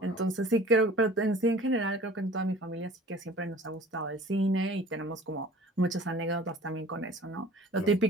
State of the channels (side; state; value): both; normal; correlation 0.46